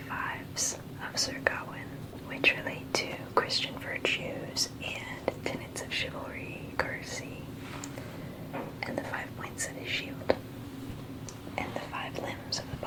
Fives of Sir Gawain, which relate to Christian virtues and tenets of chivalry, courtesy, and the 5 points of his shield, and the 5 limbs of the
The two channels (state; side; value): identical; both; correlation 1.00